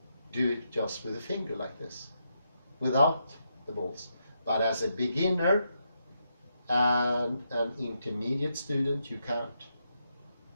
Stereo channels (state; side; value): inverted; both; correlation -0.82